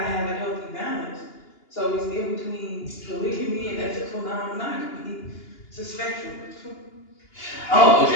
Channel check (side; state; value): right; late; 2.9 ms